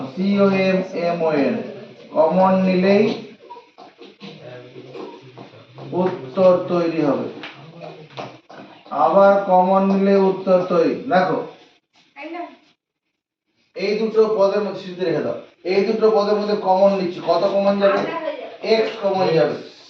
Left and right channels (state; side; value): identical; both; correlation 1.00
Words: COMMON কমন নিলেই উত্তর তৈরি হবে। আবার কমন নিলে উত্তর তৈরি। দেখো এই দুটো পদের মধ্যে সিদ্ধি রেখে দাও। এই দুটো পদের মধ্যে কমন নিচ্ছি, কত কমন যাবে? x কমন যাবে।